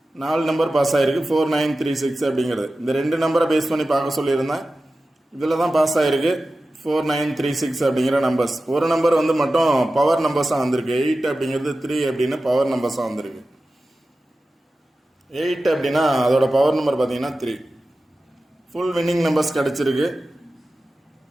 4 நம்பர் பாஸ் ஆகிருக்கு. 4936 அப்படிங்கிறது இந்த 2 நம்பரை பேஸ் பண்ணி பார்க்க சொல்லியிருந்தேன். இதில் தான் பாஸ் ஆகிருக்கு 4936 அப்படிங்கிற நம்பர்ஸ். ஒரு நம்பர் மட்டும் பவர் நம்பர்ஸாக வந்திருக்கு. 8 அப்படிங்கிறது 3 அப்படின்னு பவர் நம்பர்ஸாக வந்திருக்கு. 8 அப்படின்னா அதோட பவர் நம்பர் பார்த்தீங்கன்னா 3. ஃபுல் வின்னிங் நம்பர்ஸ் கிடச்சிருக்கு.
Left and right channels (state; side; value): normal; both; correlation 0.94